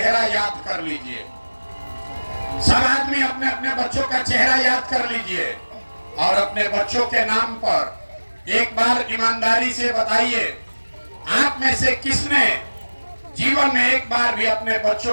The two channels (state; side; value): inverted; both; correlation -1.00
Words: याद कर लीजिए, सब आदमी अपने अपने बच्चों का चेहरा याद कर लीजिए, और अपने बच्चों के नाम पर एक बार ईमानदारी से बताइए, आप में से किसने जीवन में एक बार भी अपने